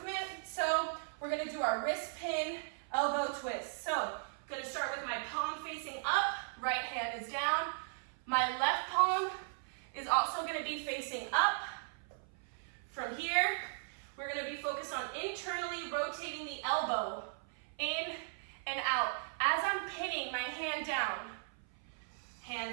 So we're gonna do our wrist pin elbow twist. So I'm gonna start with my palm facing up, right hand is down. My left palm is also going to be facing up. From here, we're going to be focused on internally rotating the elbow in and out. As I'm pinning my hand down,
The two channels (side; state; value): left; silent; 53 dB below the other